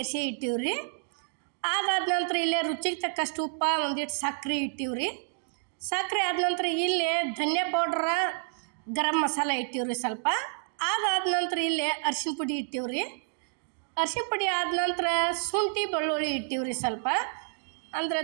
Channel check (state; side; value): silent; left; 58 dB below the other